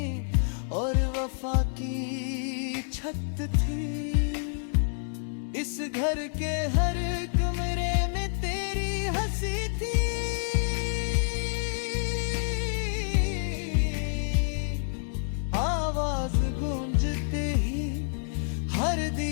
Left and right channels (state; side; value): silent; right; digital silence